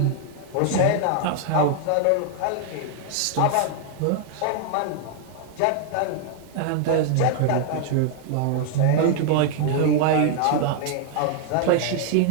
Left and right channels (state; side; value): different; both; correlation 0.00